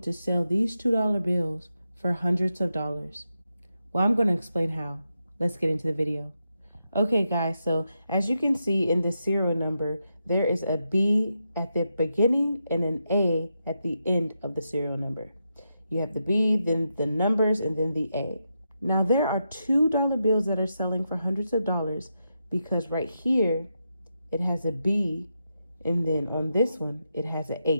sell these $2 bills for hundreds of dollars. Well, I'm going to explain how. Let's get into the video. Okay, guys, so as you can see in the serial number, there is a B at the beginning and an A at the end of the serial number. You have the B, then the numbers, and then the A. Now, there are $2 bills that are selling for hundreds of dollars because right here, it has a B, and then on this one, it has a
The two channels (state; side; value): inverted; both; correlation -0.85